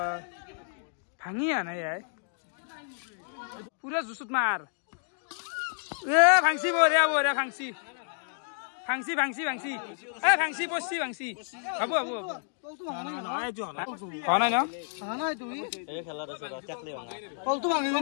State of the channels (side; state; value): right; silent; digital silence